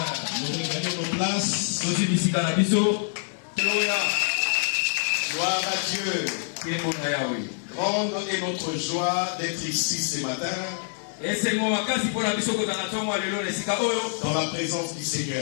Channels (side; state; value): right; silent; digital silence